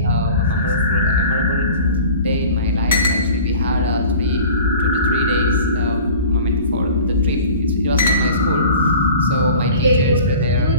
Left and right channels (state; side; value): inverted; both; correlation -0.43